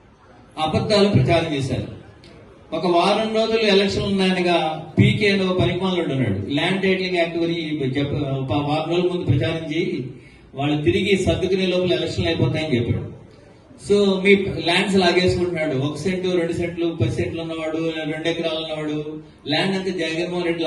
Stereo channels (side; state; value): both; identical; correlation 1.00